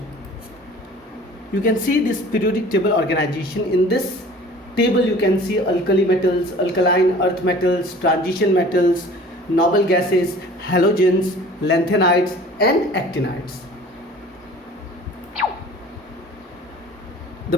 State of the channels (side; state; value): both; normal; correlation 0.46